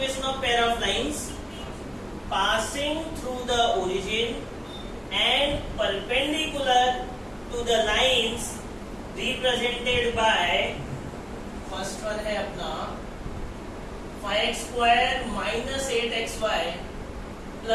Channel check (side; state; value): both; identical; correlation 1.00